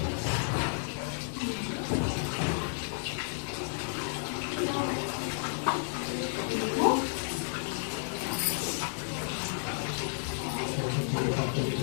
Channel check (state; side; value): silent; right; 56 dB below the other